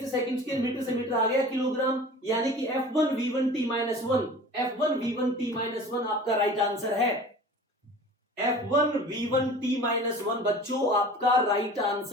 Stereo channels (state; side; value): normal; both; correlation 0.41